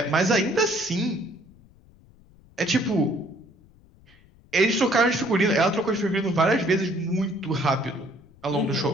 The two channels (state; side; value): noise; left; rumble, 27 dB below the sound